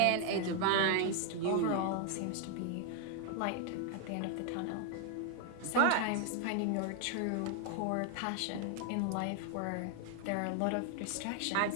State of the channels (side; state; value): both; different; correlation 0.01